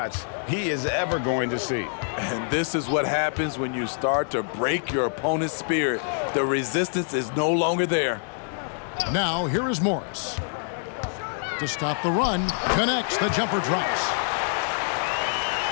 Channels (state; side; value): silent; right; 61 dB below the other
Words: he is ever going to see. And this is what happens when you start to break your opponent's spirit. The resistance is no longer there. Now, here is Morris. To stop the run, connects, the jumper drops.